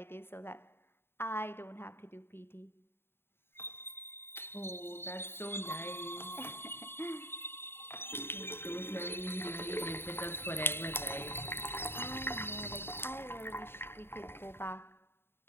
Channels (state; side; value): late; right; 0.11 ms